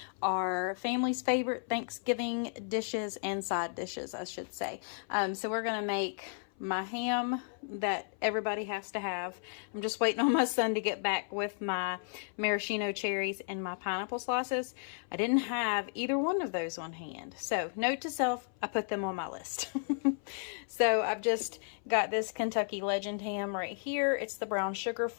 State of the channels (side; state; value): right; silent; 55 dB below the other